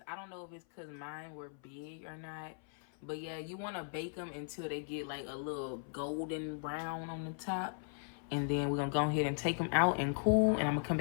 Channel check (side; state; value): right; silent; 53 dB below the other